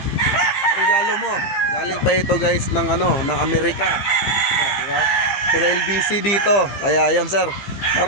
regalo mo. Galing pa ito, guys, ng ng Amerika. Diba? Pero LBC dito. Kaya ayan, sir.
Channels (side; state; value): right; late; 15 ms